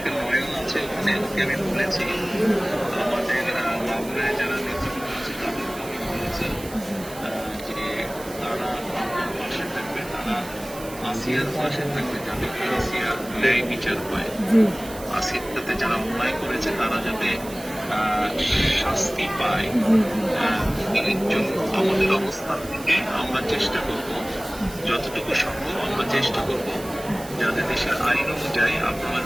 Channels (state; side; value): noise; right; hiss, 16 dB below the sound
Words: করে নয়ন আছে ওখানে, ওকে আমি বলেছি। আমাদের মাগুরায় যারা নেতৃবৃন্দ আছে তাদেরকে আমি বলেছি যে তারা আমার পাশে থাকবে, তারা আসিয়ার পাশে থাকবে, যাতে আসিয়ার ন্যায় বিচার হয়। জি আসিয়ার সাথে যারা অন্যায় করেছে তারা যাতে শাস্তি পায়। এর জন্য আমাদের অবস্থান থেকে আমরা চেষ্টা করব, যতটুকু সম্ভব আমরা চেষ্টা করব যাতে দেশের আইন অনুযায়ী আপনারা